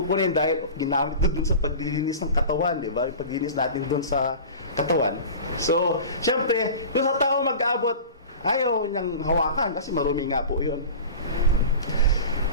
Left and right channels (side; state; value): both; inverted; correlation -0.35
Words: dahil ginamit doon sa paglilinis ng katawan, di ba? Yung paglilinis natin doon sa katawan. So, syempre, yung sa tao mag-abot, ayaw niyang hawakan kasi marumi nga po yun.